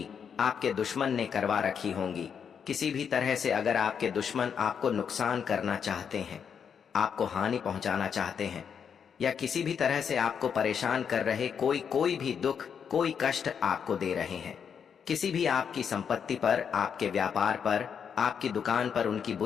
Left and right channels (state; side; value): quieter; right; 7.2 dB